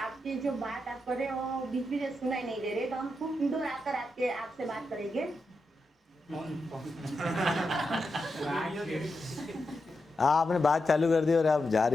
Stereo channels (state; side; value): normal; both; correlation 0.87